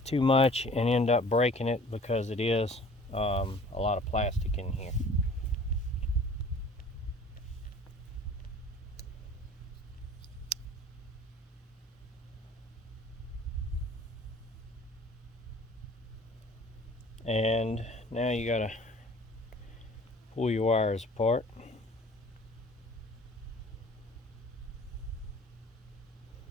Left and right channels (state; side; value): normal; both; correlation 0.48